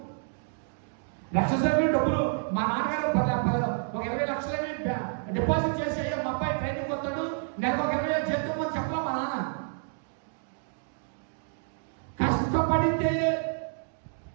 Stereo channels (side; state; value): left; silent; 58 dB below the other